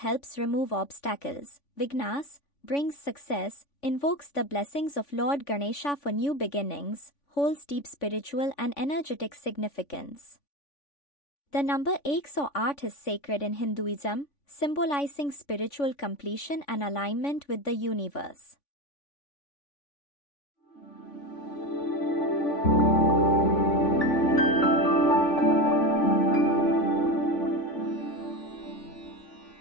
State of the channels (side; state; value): right; late; 3.5 ms